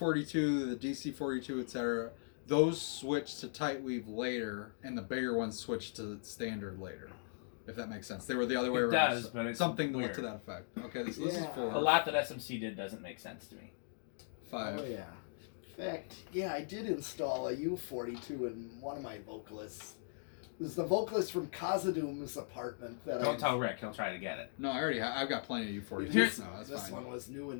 the DC42, etc. Those switched to tight weave later, and the bigger ones switched to standard later. If that makes sense, they were the other way It around. does, but it's something weird. to that effect. Okay, this is Yeah. 4. a lot that SMC did doesn't make sense to me. 5. Oh yeah. In fact, yeah, I did install a U42 in one of my vocalists. It was the vocalist from Kazadoom's apartment that Don't tell Rick; he'll try to get it. No, I already I've got plenty of U42s. Here's- No, that's This fine. one was new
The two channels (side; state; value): right; silent; digital silence